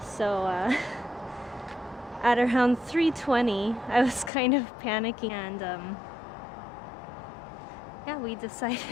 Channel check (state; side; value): drops out; right; at 4.3 s